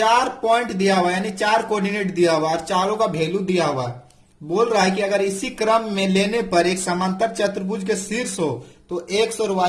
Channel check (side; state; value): both; identical; correlation 1.00